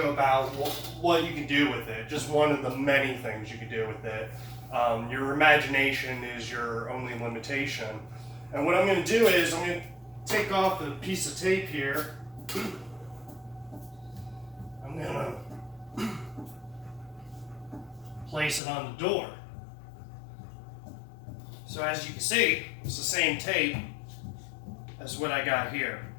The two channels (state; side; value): drops out; right; at 18.6 s